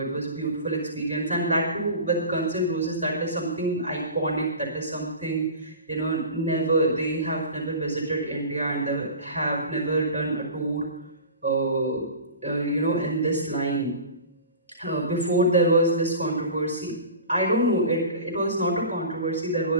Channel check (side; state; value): both; inverted; correlation -0.36